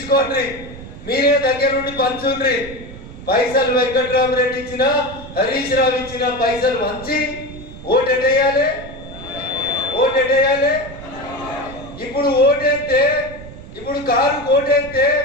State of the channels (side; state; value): right; noise; rumble, 14 dB below the sound